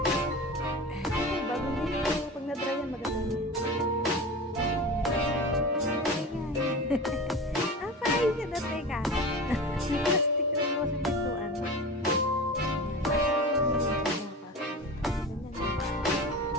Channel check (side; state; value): both; normal; correlation 0.31